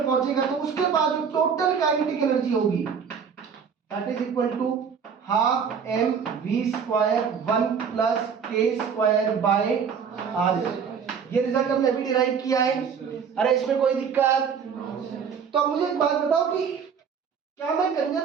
पहुंचेगा तो उसके बाद जो टोटल काइनेटिक एनर्जी होगी that is equal to half M V square 1 plus K square by R. ये रिजल्ट हमने अभी डिराइव किया है। अरे इसमें कोई दिक्कत? तो अब मुझे एक बात बताओ कि क्या मैं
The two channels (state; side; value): quieter; left; 6.7 dB